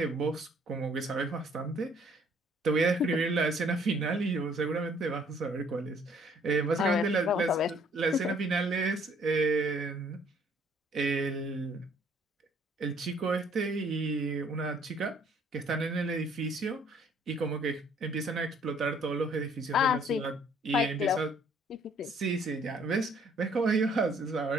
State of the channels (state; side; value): normal; both; correlation 0.61